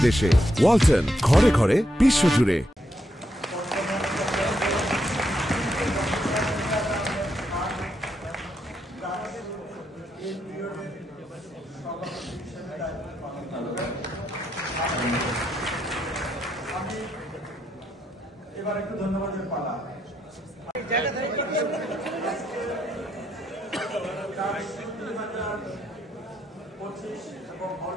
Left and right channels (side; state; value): both; normal; correlation 0.79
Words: দেশে। ওয়ালটন, ঘরে ঘরে বিশ্বজুড়ে। আমি এবার একটু ধন্যবাদের পালা। 25 এবং হল